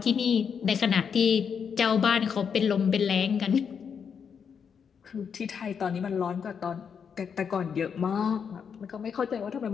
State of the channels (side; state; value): right; quieter; 6.9 dB